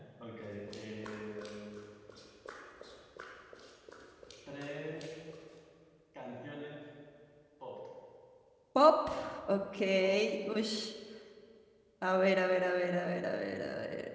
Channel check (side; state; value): both; identical; correlation 1.00